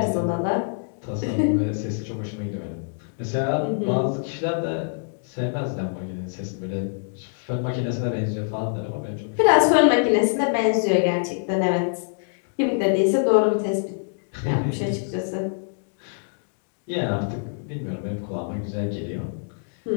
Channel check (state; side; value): silent; right; digital silence